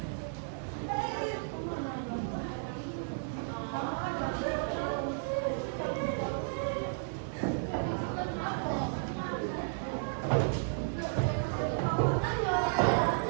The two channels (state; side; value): silent; left; 56 dB below the other